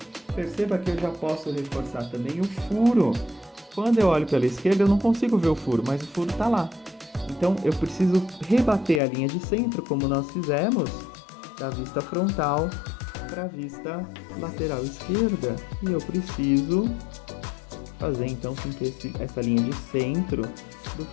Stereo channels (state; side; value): drops out; right; at 9.0 s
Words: Perceba que eu já posso reforçar também o furo. Quando eu olho pela esquerda, eu não consigo ver o furo, mas o furo está lá. Então, eu preciso rebater a linha de centro, como nós fizemos, da vista frontal para a vista lateral esquerda. E eu preciso fazer, então, com que essa linha de centro do